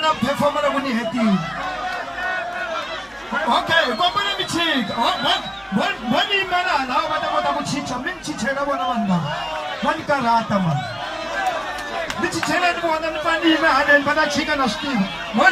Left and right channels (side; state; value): both; identical; correlation 1.00